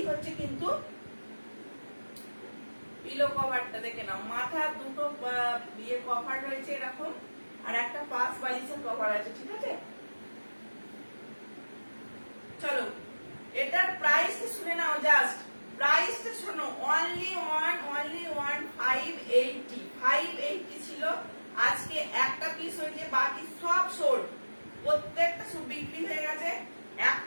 হচ্ছে কিন্তু পিলো কভারটা, দেখে নাও, মাথা দুটো ইয়ে কভার রয়েছে এরকম, আর একটা পাঁচ বালিশের কভার আছে, ঠিক আছে। চলো এটার প্রাইস শুনে নাও, জাস্ট প্রাইসটা শোনো, অনলি ওয়ান 580 ছিল। আজকে একটা পিস হয়েছে, বাকি সব সোল্ড, প্রত্যেকটা সব বিক্রি হয়ে গেছে,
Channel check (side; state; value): both; inverted; correlation -1.00